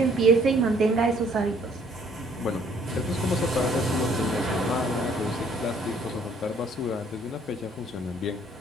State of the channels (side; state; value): both; normal; correlation 0.61